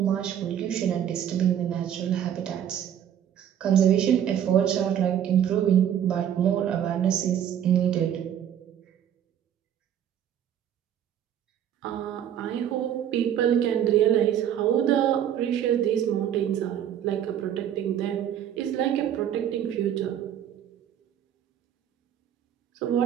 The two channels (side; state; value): left; quieter; 10.0 dB